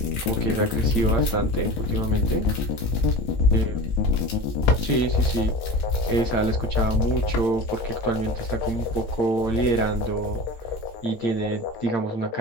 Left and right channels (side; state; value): right; late; 9.6 ms